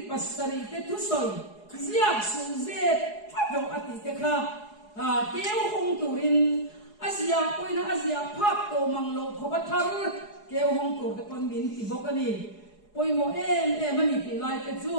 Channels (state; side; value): late; right; 4.8 ms